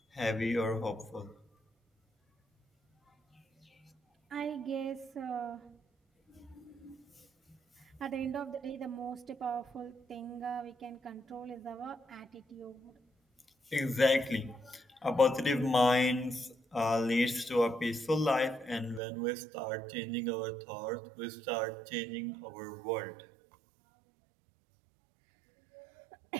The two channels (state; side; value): drops out; left; at 19.0 s